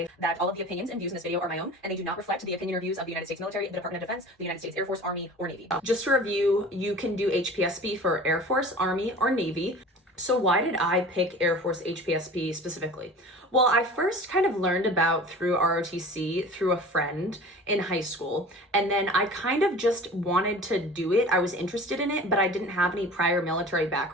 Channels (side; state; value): both; normal; correlation 0.40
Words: that all of the opinions and views in this video are my own, and they do not reflect the opinion or views of the United States military, the Department of Defense, the United States Air Force, Army, or Navy. Just to review, you can do HPSP for Air Force, Army, or Navy. So why did I pick Air Force HPSP specifically? Well, I first kind of learned about through ROTC through a friend in high school, and then I kind of just wanted to do it. I was interested in it, but I didn't have any prior military